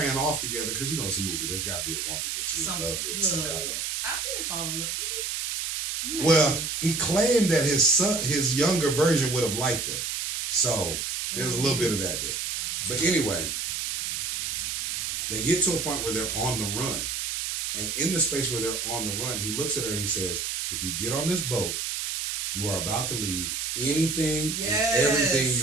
off together because it's a movie. There's got to be a woman that you in love with. He didn't fall in love. Did he? Well, he claimed that his younger version would have liked her. So there's a little bit of that there. But anyway, they get to a point where they're on the run. And in the space where they're on the run, he looks at her and he says, if you get on this boat, you are about to leave anything and everything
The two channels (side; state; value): right; noise; hiss, 2 dB below the sound